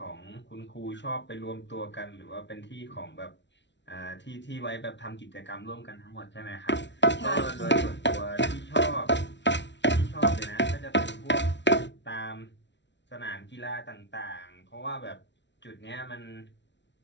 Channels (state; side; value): late; right; 0.51 ms